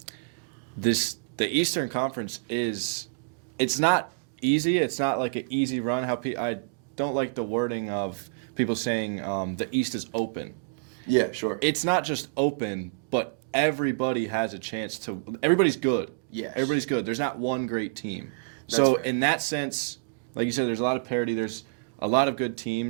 The Eastern Conference it's not easy. It's not like an easy run. I don't like the wording of people saying the East is open. Yeah, sure. It's not just open, but everybody has a chance to. Everybody's good. Yes. Everybody's good. There's not one great team. That's so fair. in that sense, like you said, there's a lot of parity. There's a lot of good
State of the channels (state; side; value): quieter; left; 36.4 dB